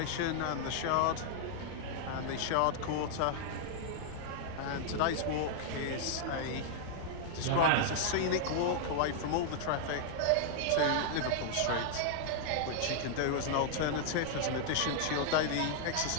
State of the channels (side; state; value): both; different; correlation 0.00